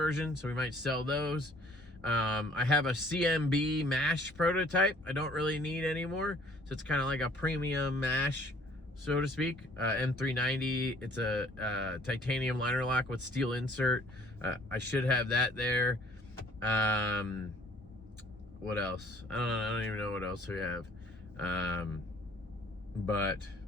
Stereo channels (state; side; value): normal; both; correlation 0.57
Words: so we might sell those. I have a CMB mash prototype I don't really need anymore, so it's kind of like a premium mash, so to speak. M390, it's a titanium liner lock with steel insert. I should have that there. What else? I don't even know what else we have. But